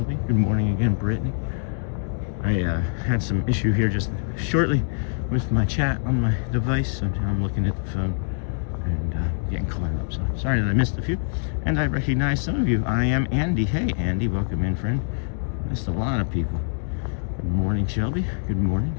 Good morning again, Brittany. I had some issue here just shortly with my chat on my device, so I'm looking at the phone and getting caught up. So sorry that I missed a few. And I recognize some of you. I am Andy. Hey, Andy. Welcome in, friend. Missed a lot of people. Good morning, Shelby. Good morning.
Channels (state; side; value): silent; right; digital silence